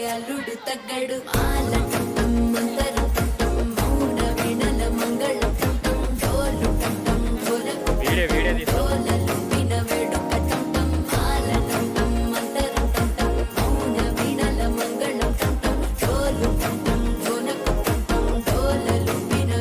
అల్లుడు తగ్గడు ఆలటం మంతరు మౌన వినల మంగళ డోలు డోలలు వినవేడు కటం ఆలటం మంతరు మౌన వినల మంగళ డోలు డోలలు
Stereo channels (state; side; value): identical; both; correlation 1.00